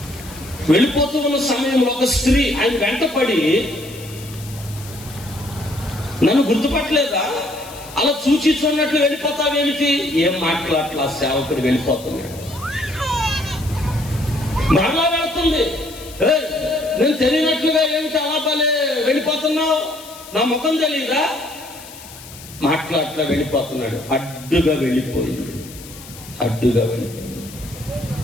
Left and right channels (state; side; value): noise; left; hiss, 17 dB below the sound